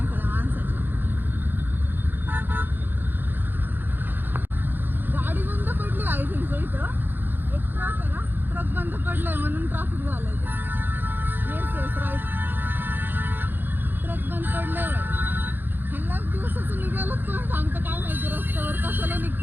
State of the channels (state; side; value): late; left; 0.094 ms